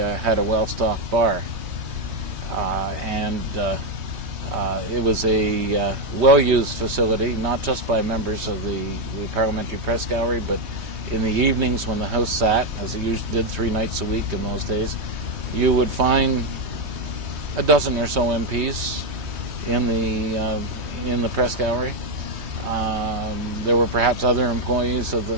a well-stocked bar. It was a well-used facility, not just by members of the parliamentary press gallery, but in the evenings when the House sat, as it usually did 3 nights a week in those days, you would find a dozen or so MPs in the press gallery. There were perhaps other employees of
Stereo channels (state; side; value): late; left; 3.2 ms